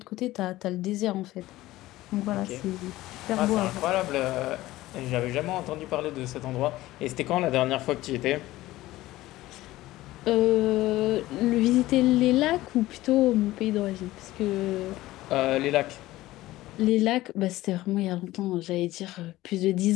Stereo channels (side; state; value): right; quieter; 16.9 dB